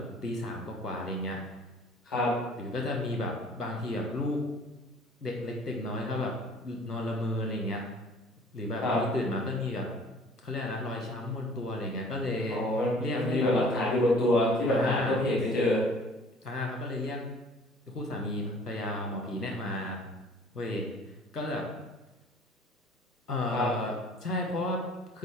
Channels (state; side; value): normal; both; correlation 0.51